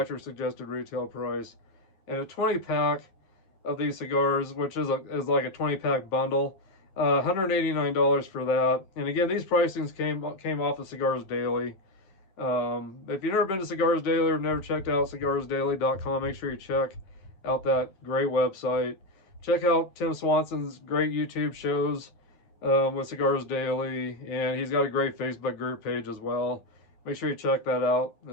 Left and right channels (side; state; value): right; late; 10 ms